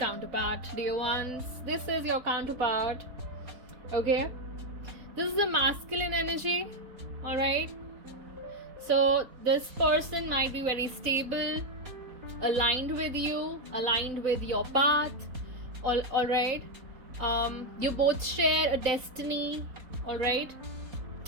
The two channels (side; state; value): left; late; 4.2 ms